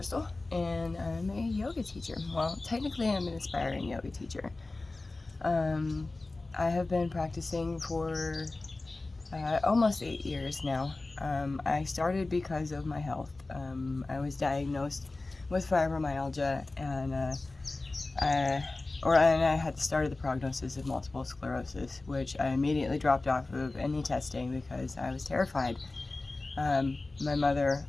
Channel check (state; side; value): quieter; right; 3.2 dB